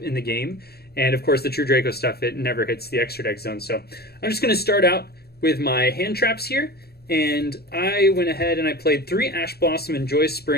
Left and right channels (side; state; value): right; late; 0.46 ms